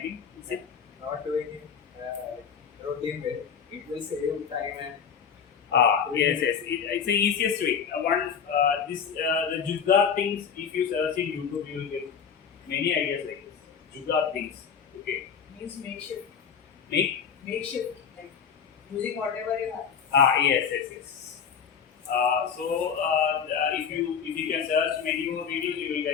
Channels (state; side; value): quieter; right; 7.0 dB